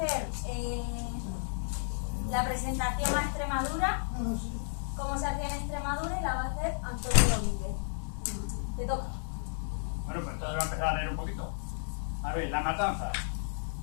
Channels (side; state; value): right; silent; digital silence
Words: la presentación a Extremadura, cómo se hacía en Extremadura, y la va a hacer Antonio Domínguez. Te toca. Bueno, pues entonces voy a empezar a leer un poquito. A ver, la matanza